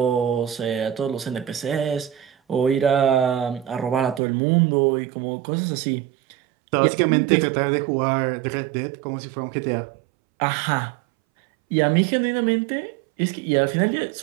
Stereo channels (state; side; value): drops out; left; at 4.2 s